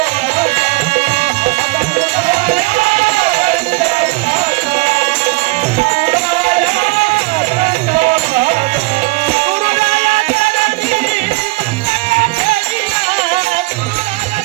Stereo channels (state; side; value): quieter; left; 23.3 dB